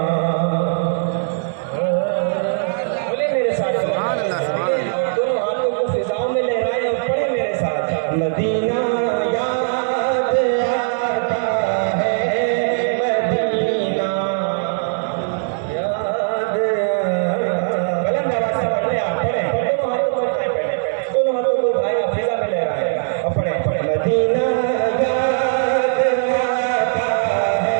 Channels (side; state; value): left; silent; digital silence